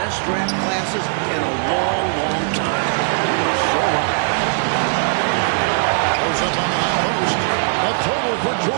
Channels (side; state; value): left; silent; digital silence